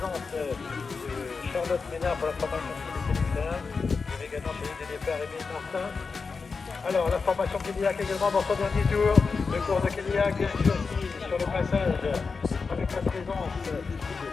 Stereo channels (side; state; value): right; quieter; 4.8 dB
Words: de Charlotte Ménard pour la formation de féminine. Il y avait également chez les départs Émile Martin. Alors, la formation Kéliac également dans son dernier tour. Le cours de Kéliac sur le passage avec la présence de